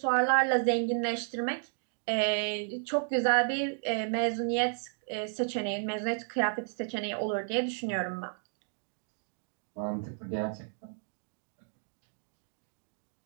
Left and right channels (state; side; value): silent; left; digital silence